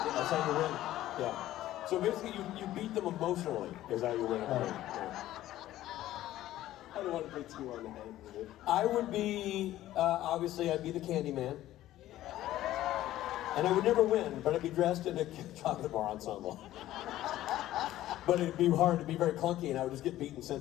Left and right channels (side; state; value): right; quieter; 14.2 dB